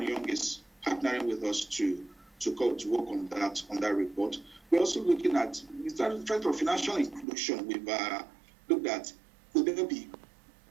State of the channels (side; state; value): left; drops out; at 7.2 s